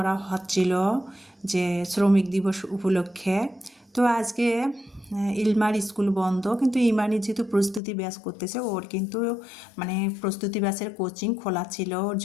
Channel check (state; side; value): drops out; right; at 7.8 s